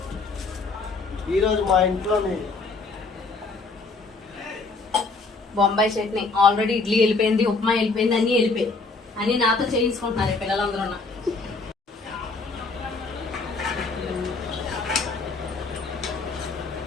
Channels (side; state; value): right; quieter; 3.9 dB